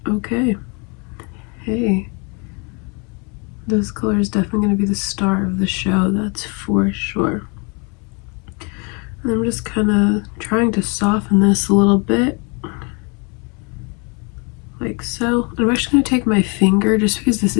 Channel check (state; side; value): quieter; right; 32.8 dB